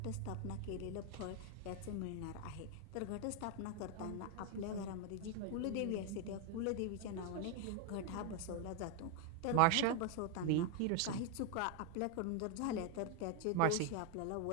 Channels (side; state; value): both; different; correlation 0.01